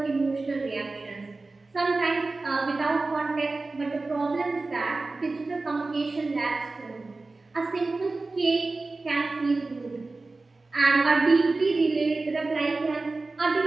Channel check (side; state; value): left; quieter; 3.5 dB